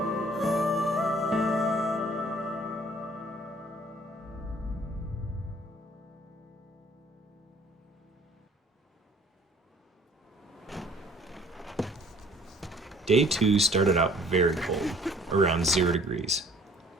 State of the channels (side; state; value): both; normal; correlation 0.56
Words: Day 2 started out very cold, around 0 degrees.